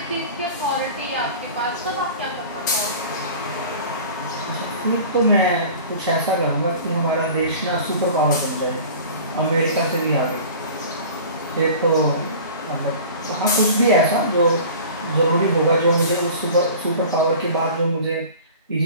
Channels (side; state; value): both; inverted; correlation -0.41